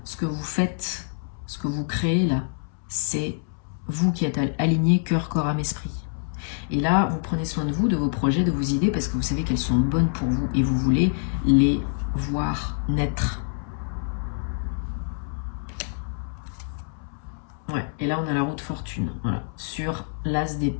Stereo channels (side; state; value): right; silent; 61 dB below the other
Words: Ce que vous faites, ce que vous créez là, c'est vous qui êtes alignés cœur, corps, âme, esprit. Et là, vous prenez soin de vous, de vos projets, de vos idées, parce que vous savez qu'elles sont bonnes pour vous et vous voulez les voir naître. Ouais, et là, on a la roue de fortune, voilà, sur l'as